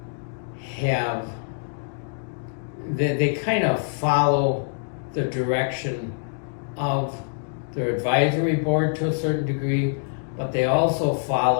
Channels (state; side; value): silent; right; digital silence